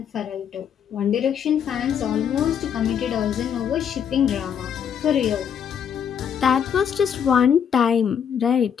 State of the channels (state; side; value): quieter; right; 8.2 dB